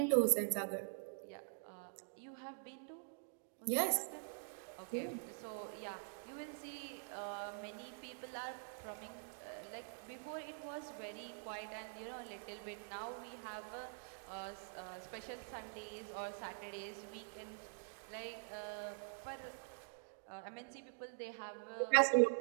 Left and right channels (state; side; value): silent; left; digital silence